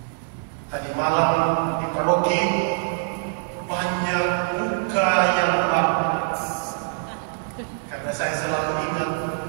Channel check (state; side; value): silent; left; digital silence